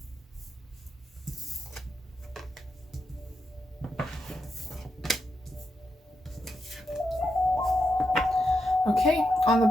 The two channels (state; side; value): normal; both; correlation 0.84